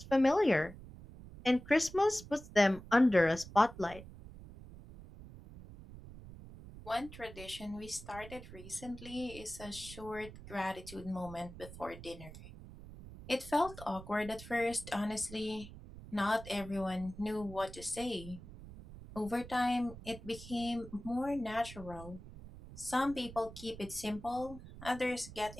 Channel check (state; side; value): noise; right; rumble, 15 dB below the sound